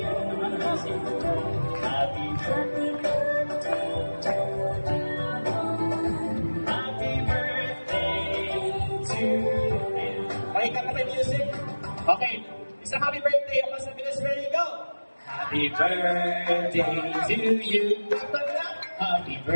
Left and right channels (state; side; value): inverted; both; correlation -1.00